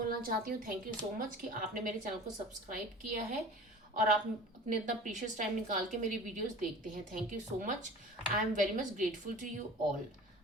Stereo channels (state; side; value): normal; both; correlation 0.41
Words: चाहती हूँ। थैंक यू सो मच कि आपने मेरे चैनल को सब्सक्राइब किया है और आप अपने इतना प्रीशियस टाइम निकाल के मेरी वीडियोस देखते हैं। Thank you so much. I am very much grateful to you all.